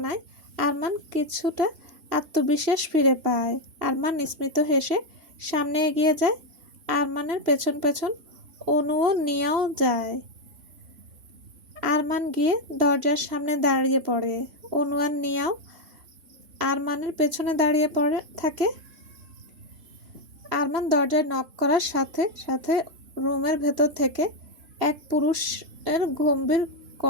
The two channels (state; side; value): late; left; 3.0 ms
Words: আরমান কিছুটা আত্মবিশ্বাস ফিরে পায়। আরমান স্মিত হেসে সামনে এগিয়ে যায়। আরমানের পেছন পেছন অনুও নিয়েও যায়। আরমান গিয়ে দরজার সামনে দাঁড়িয়ে পড়ে। অনু আর নিয়াও আরমানের পেছনে দাঁড়িয়ে পড়ে থাকে। আরমান দরজায় নক করার সাথে সাথে রুমের ভেতর থেকে এক পুরুষের গম্ভীর